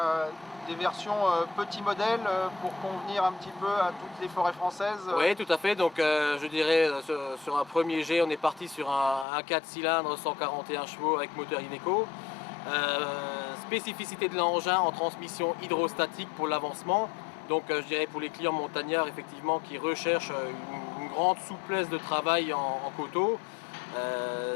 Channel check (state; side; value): drops out; right; at 9.2 s